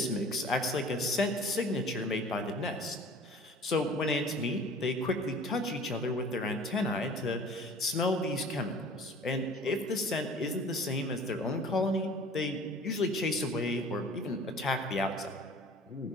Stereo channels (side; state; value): both; normal; correlation 0.46